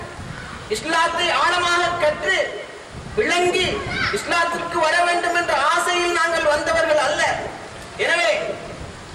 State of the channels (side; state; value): both; identical; correlation 1.00